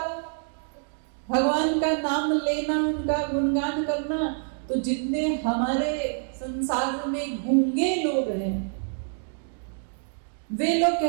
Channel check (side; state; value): left; silent; 60 dB below the other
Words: भगवान का नाम लेना, उनका गुणगान करना, तो जितने हमारे संसार में गूंगे लोग हैं, वे लोग